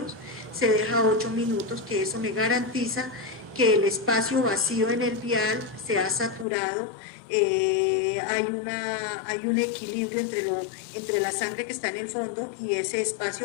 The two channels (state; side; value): drops out; right; at 6.5 s